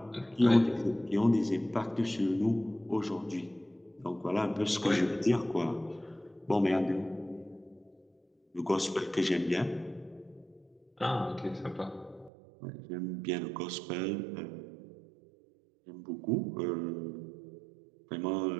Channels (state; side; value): drops out; left; at 12.3 s